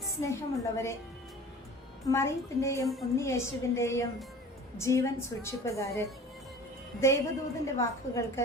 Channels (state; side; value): normal; both; correlation 0.42